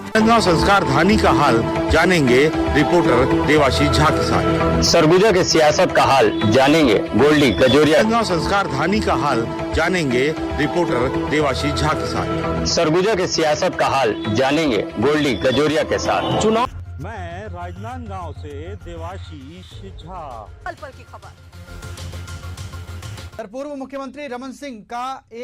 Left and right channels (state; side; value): identical; both; correlation 1.00